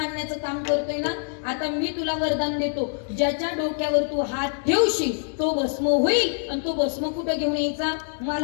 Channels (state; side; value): silent; right; 62 dB below the other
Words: काम करतोय ना, आता मी तुला वरदान देतो, ज्याच्या डोक्यावर तू हात ठेवशील तो भस्म होईल. आणि तो भस्म कुठं घेऊन यायचा?